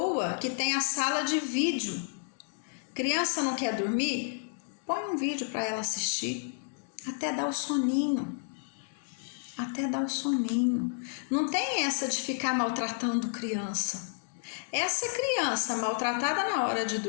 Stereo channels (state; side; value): silent; right; digital silence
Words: que tem a sala de vídeo. Criança não quer dormir? Põe um vídeo para ela assistir, até dar o soninho. Não tem essa de ficar maltratando criança. Essa criança maltratada na hora de